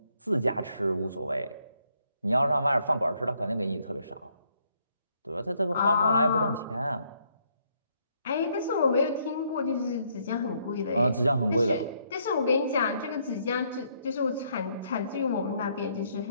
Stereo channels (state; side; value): inverted; both; correlation -0.71